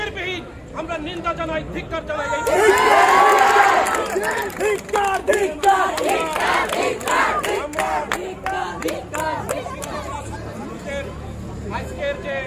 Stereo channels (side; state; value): both; identical; correlation 1.00